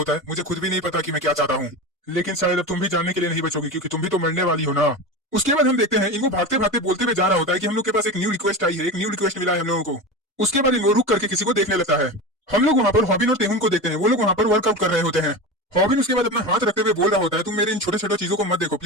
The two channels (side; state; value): both; normal; correlation 0.25